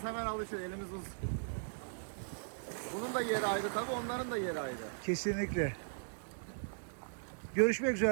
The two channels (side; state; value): left; silent; digital silence